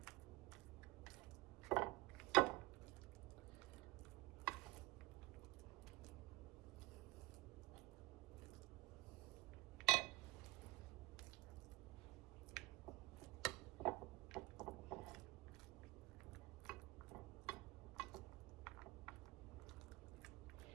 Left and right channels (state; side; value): quieter; left; 20.6 dB